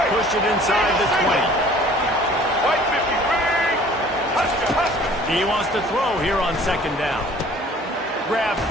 pushed it inside the 20. He wants to throw here on 2nd down. Grabbed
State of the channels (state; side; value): normal; both; correlation 0.51